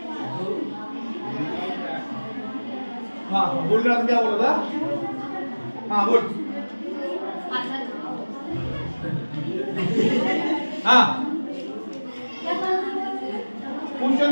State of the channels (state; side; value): inverted; both; correlation -1.00